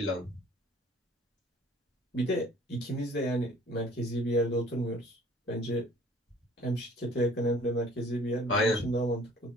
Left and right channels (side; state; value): both; normal; correlation 0.52